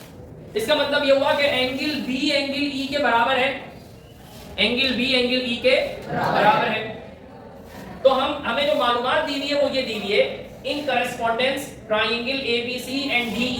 इसका मतलब ये हुआ कि एंगल बी एंगल ई के बराबर है, एंगल बी एंगल ई के बराबर है। तो हमें जो मालूमात दी हुई है वो ये दी हुई है, in correspondence triangle ABC and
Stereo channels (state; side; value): identical; both; correlation 1.00